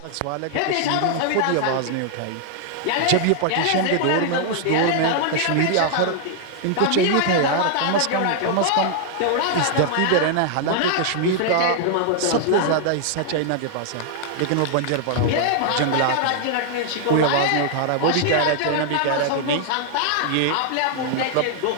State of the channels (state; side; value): different; both; correlation -0.01